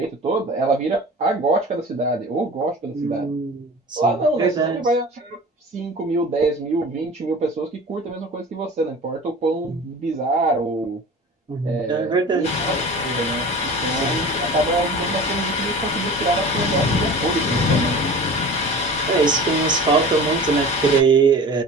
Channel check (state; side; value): normal; both; correlation 0.38